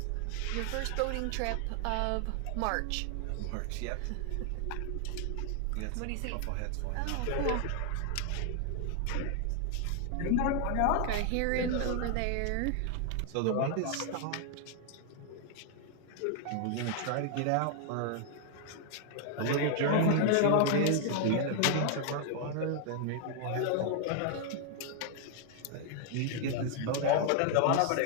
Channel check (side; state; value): both; different; correlation 0.00